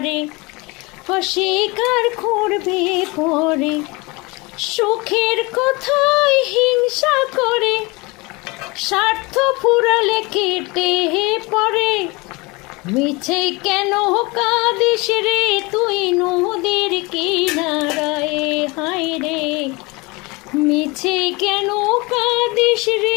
অস্বীকার করবে পরে, সুখের কথায় হিংসা করে স্বার্থ ফুরালে কেটে পড়ে। মিছে কেন কাঁদিস রে তুই নদীর কিনারায়, হায় রে মিছে কেন কাঁদিস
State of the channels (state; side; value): quieter; right; 25.4 dB